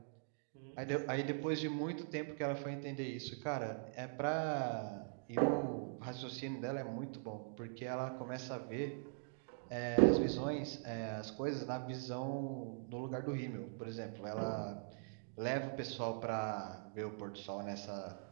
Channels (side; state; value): left; silent; digital silence